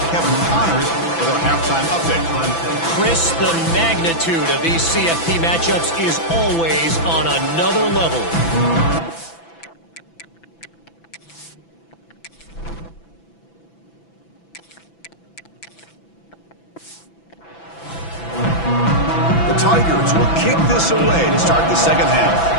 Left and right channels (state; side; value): late; right; 6.0 ms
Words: Kevin Connors with our halftime update. Chris, the magnitude of these CFP matchups is always on another level. The Tigers will kick this away to start the second half.